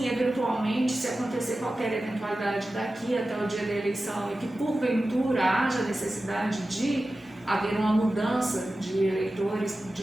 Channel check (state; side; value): normal; both; correlation 0.94